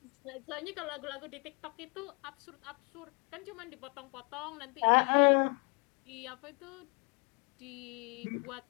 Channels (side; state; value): right; quieter; 35.5 dB